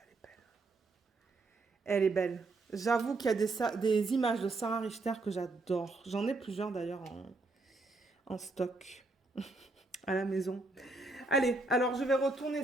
est belle. Elle est belle. J'avoue qu'il y a des images de Sarah Richter que j'adore. J'en ai plusieurs d'ailleurs en stock à la maison. Allez, alors je vais retourner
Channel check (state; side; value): quieter; left; 3.2 dB